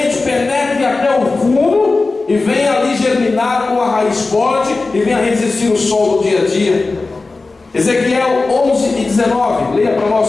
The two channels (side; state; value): right; quieter; 3.6 dB